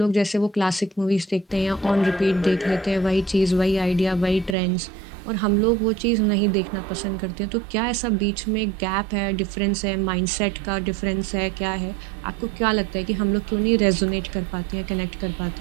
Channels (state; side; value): drops out; left; at 4.5 s